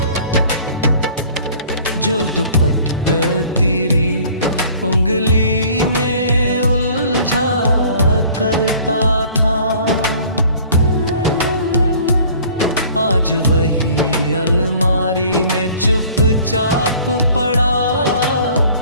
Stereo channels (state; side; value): inverted; both; correlation -0.50